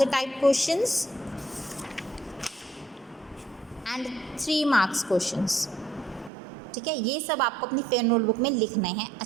type questions and 3 marks questions। ठीक है, ये सब आपको अपनी फेयर नोटबुक में लिखना है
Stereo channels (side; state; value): left; drops out; at 6.3 s